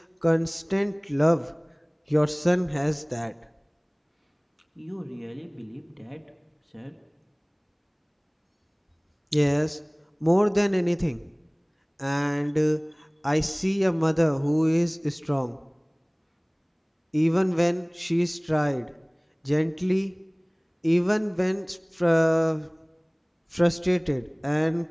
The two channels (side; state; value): both; identical; correlation 1.00